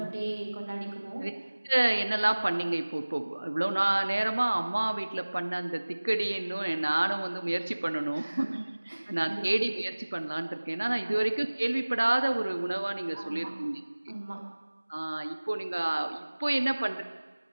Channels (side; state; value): both; inverted; correlation -1.00